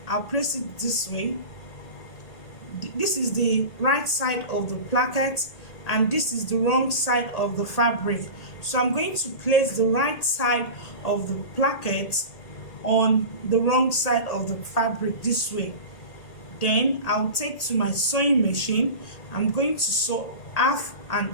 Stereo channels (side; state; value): right; late; 1.8 ms